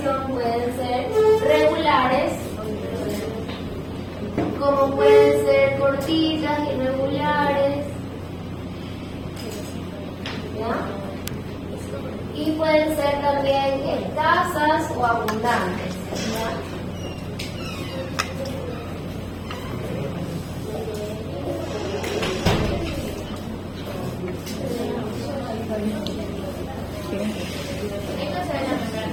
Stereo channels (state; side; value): identical; both; correlation 1.00